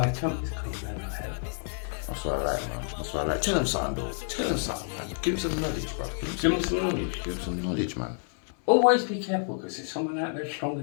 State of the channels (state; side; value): silent; right; 59 dB below the other